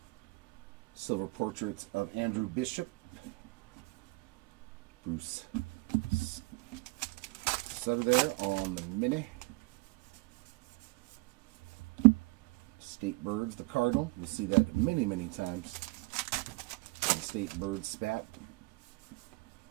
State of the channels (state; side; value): quieter; left; 24.3 dB